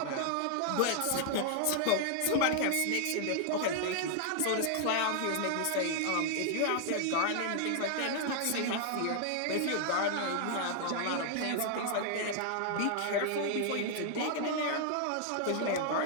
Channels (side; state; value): both; different; correlation 0.00